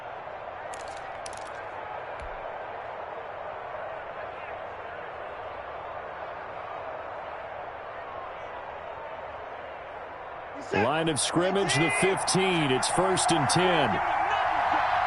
Line of scrimmage, the 15. It's 1st and 10.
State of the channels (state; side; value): identical; both; correlation 1.00